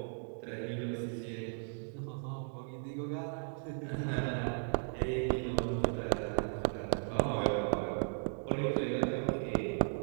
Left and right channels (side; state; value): left; silent; digital silence